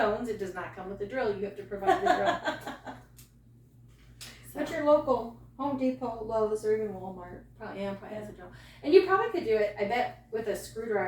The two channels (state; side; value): identical; both; correlation 1.00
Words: It does not come with the drill. You have to provide the drill. At your local Home Depot, Lowe's, or even Walmart. Probably has a drill. And you probably could do it, I bet, with a